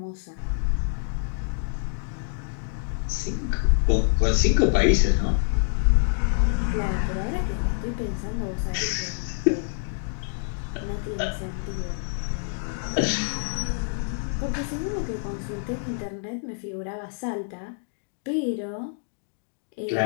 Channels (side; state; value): right; silent; digital silence